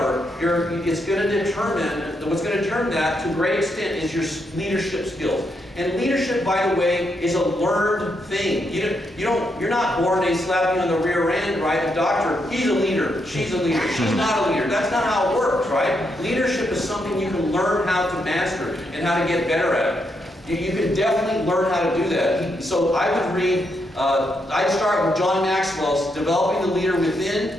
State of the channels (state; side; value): normal; both; correlation 0.80